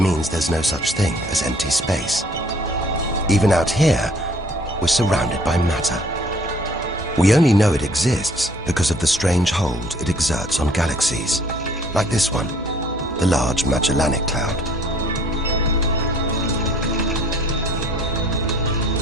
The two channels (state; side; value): normal; both; correlation 0.57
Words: there's no such thing as empty space. Even out here, we're surrounded by matter. We only know it exists because of the strange hold it exerts on galaxies, like this one, the Large Magellanic Cloud.